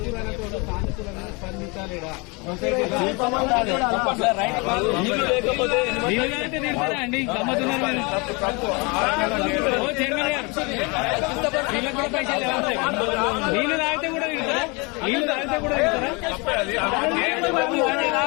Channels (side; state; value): right; quieter; 29.0 dB